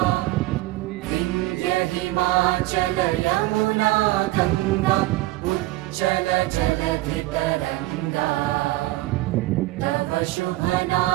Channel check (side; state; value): left; quieter; 18.4 dB